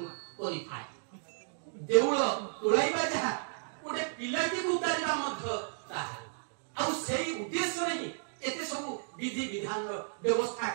करी थाए देउळ तोलाइबा जहा गोटे पिलाटी को उतारिबा मध्य ताहा आ सेही उद्देश्य रे एते सब विधि विधान रो व्यवस्था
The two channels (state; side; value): silent; left; digital silence